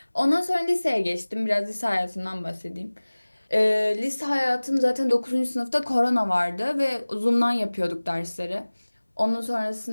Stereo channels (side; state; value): both; inverted; correlation -1.00